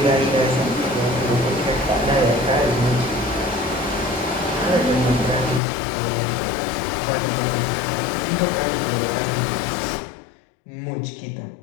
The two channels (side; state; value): right; drops out; at 5.6 s